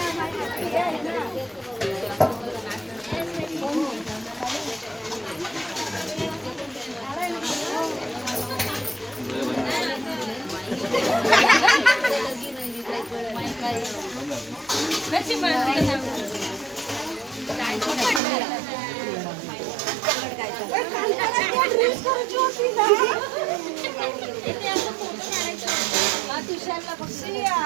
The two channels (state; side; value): drops out; left; at 18.2 s